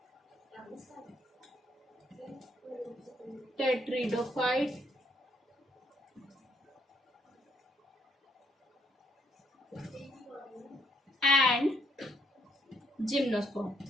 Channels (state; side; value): normal; both; correlation 0.72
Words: tetridophyte, and gymnosperm.